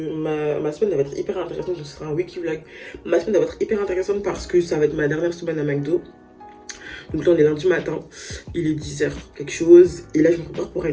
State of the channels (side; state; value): both; identical; correlation 1.00